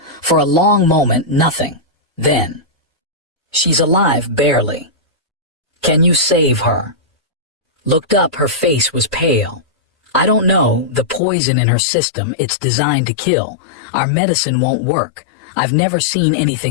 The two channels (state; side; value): drops out; right; at 11.2 s